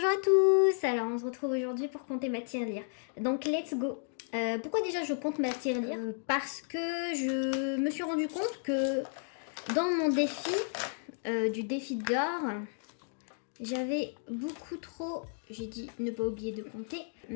à tous. Alors on se retrouve aujourd'hui pour compter ma tirelire. Donc let's go. Pourquoi déjà je compte ma tirelire? Parce que je me suis rendu compte que dans mon défi, du défi d'or, j'avais beaucoup trop, j'ai dit ne pas oublier de compter,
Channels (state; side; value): silent; right; digital silence